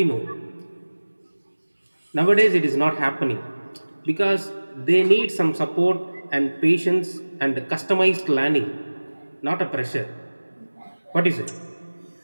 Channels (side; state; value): both; inverted; correlation -1.00